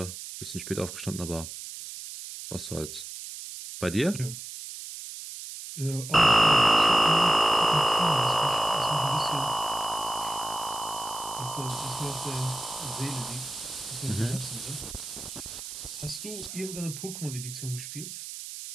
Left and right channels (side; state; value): right; noise; hiss, 10 dB below the sound